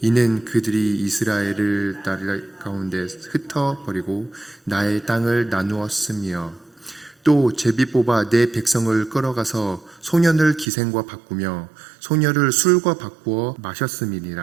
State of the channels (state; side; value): drops out; left; at 10.7 s